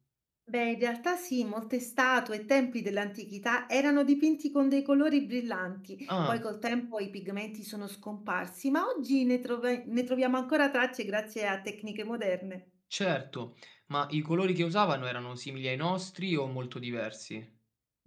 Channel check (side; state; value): both; identical; correlation 1.00